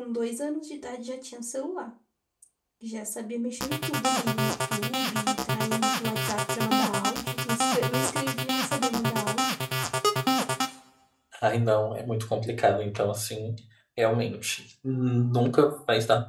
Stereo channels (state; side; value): identical; both; correlation 1.00